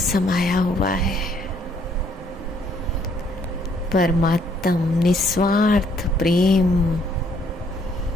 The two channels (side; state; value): both; normal; correlation 0.66